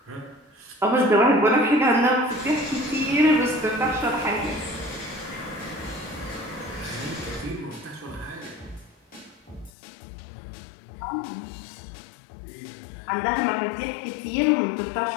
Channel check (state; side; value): drops out; right; at 9.7 s